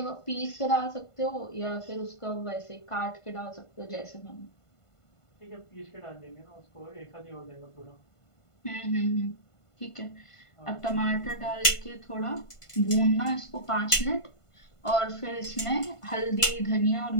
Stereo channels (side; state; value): right; late; 1.5 ms